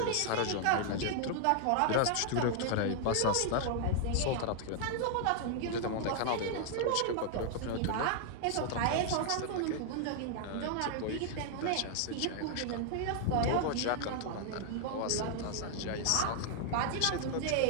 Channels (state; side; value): different; both; correlation 0.00